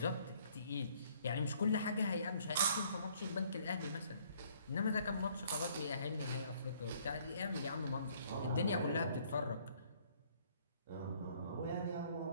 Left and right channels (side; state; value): both; inverted; correlation -0.62